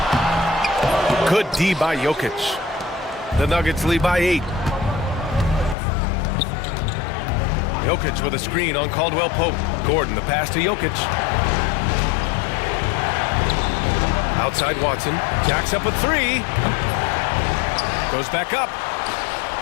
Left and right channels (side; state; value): right; drops out; at 5.8 s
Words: Good D by Jokic. The Nuggets lead by 8. Jokic with a screen on Caldwell Pope. Gordon, the pass to Jokic. Outside Watson. Jacks up with 3. Goes back up.